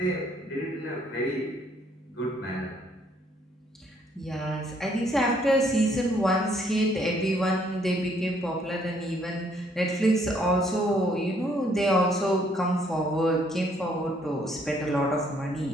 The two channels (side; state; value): both; normal; correlation 0.66